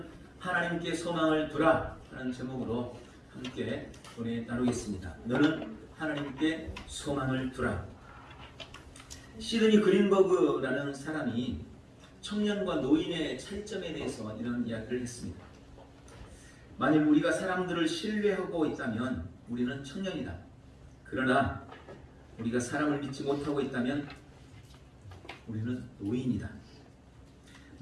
하나님께 소망을 두라 하는 제목으로 함께 은혜 나누겠습니다. 너는 하나님께 소망을 두라. 시드니 그린버그라는 사람이 청년과 노인의 차이점에 대해서 이런 이야기를 했습니다. 만일 우리가 사람들을 신뢰하고 있다면 우리는 청년이다. 그러나 우리가 사람을 믿지 못하고 있다면 우리는 노인이다.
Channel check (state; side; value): identical; both; correlation 1.00